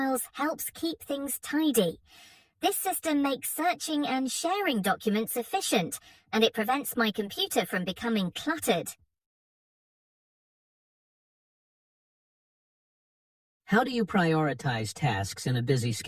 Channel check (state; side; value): identical; both; correlation 1.00